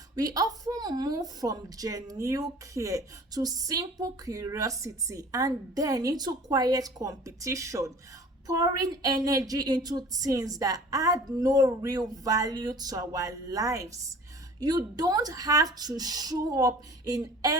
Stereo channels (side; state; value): both; normal; correlation 0.45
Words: We often move from genuine care to simple curiosity and then into quiet competition, pouring energy into things that add no real value to our lives. You don't have to show up in